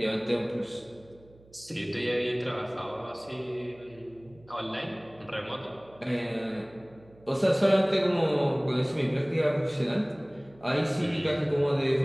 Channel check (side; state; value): right; noise; hum, 26 dB below the sound